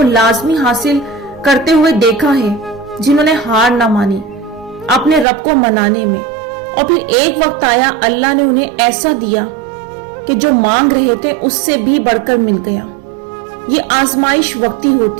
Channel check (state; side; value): drops out; left; at 5.2 s